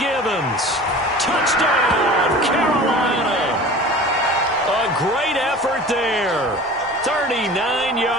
Touchdown, Carolina. A great effort there. 39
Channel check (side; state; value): both; normal; correlation 0.39